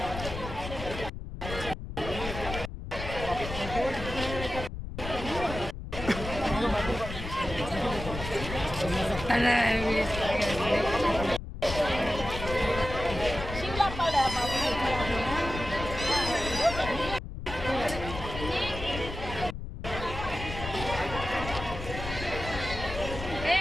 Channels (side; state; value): left; noise; rumble, 8 dB below the sound